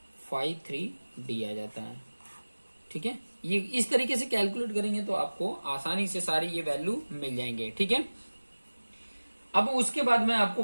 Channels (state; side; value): inverted; both; correlation -1.00